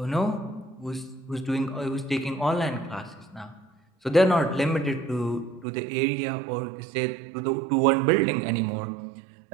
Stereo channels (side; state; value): left; drops out; at 5.7 s